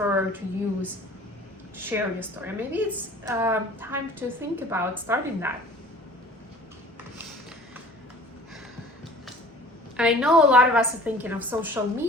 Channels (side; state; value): both; normal; correlation 0.47